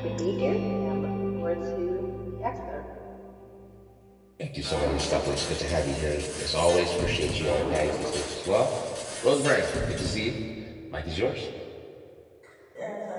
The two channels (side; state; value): both; identical; correlation 1.00